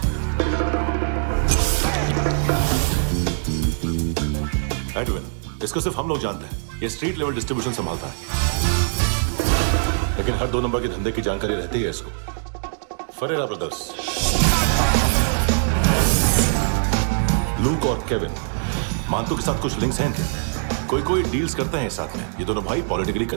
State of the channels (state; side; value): silent; left; digital silence